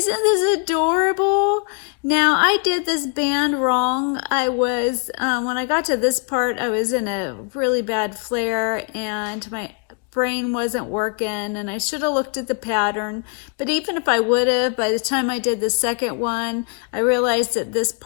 adorable? Now, I did this band wrong. I was, when I got to this part, I was in a really bad flare and my brain wasn't working, and I should have looked at the pattern. But even if I would have, by the time I did the second one, I realized that this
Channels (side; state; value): right; quieter; 36.6 dB